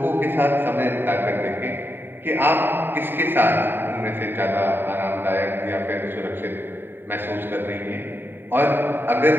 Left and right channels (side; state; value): left; late; 0.097 ms